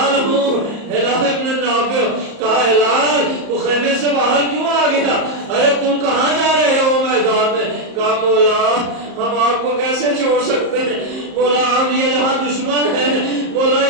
ہوں، ہلال ابن نافع۔ کہا ہلال تو خیمے سے باہر کیوں آ گیا؟ ارے تم کہاں جا رہے ہو میدان میں؟ کہا مولا ہم آپ کو کیسے چھوڑ سکتے ہیں، مولا آپ یہ یہاں دشمن ہیں، مولا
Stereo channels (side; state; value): left; late; 34 ms